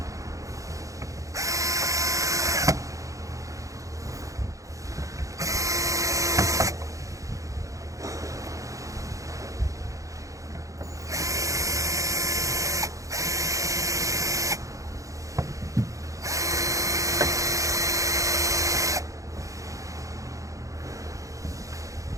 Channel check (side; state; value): left; late; 0.16 ms